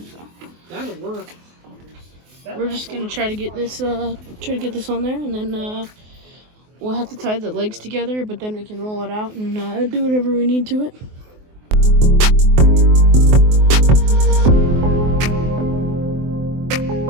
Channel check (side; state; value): left; late; 24 ms